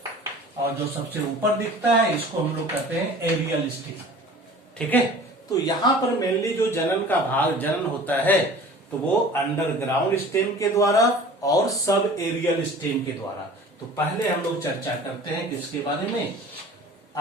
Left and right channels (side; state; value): both; normal; correlation 0.44